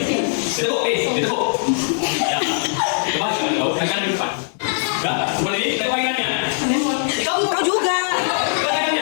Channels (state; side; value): silent; right; digital silence